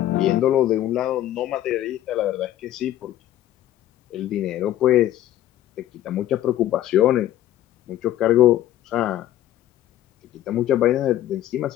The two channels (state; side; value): quieter; right; 13.0 dB